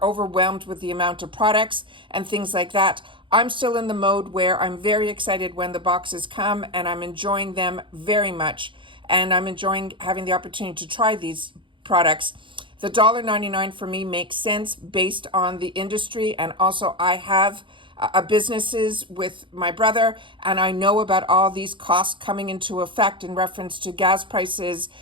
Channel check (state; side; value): late; left; 0.24 ms